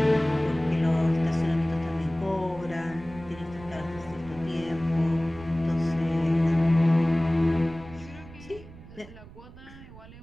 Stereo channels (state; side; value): noise; right; rumble, 18 dB below the sound